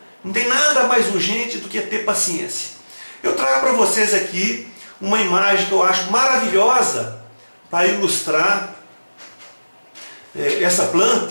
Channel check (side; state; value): both; inverted; correlation -1.00